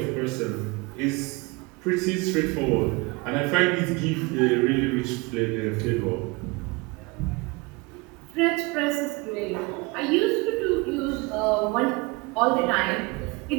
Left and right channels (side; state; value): left; quieter; 25.8 dB